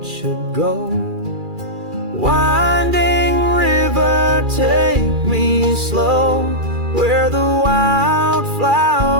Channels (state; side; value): late; left; 2.4 ms